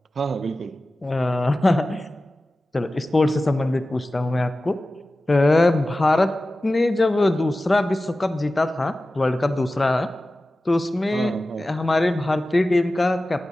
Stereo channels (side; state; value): both; normal; correlation 0.95